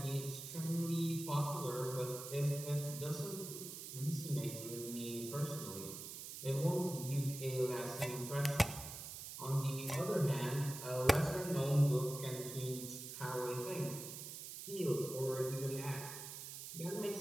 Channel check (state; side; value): noise; right; hiss, 9 dB below the sound